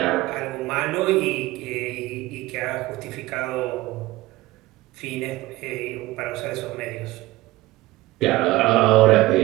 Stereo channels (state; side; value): quieter; left; 18.5 dB